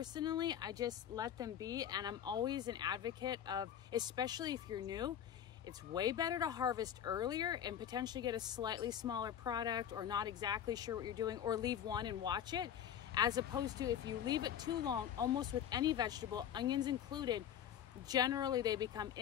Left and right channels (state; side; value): quieter; right; 9.7 dB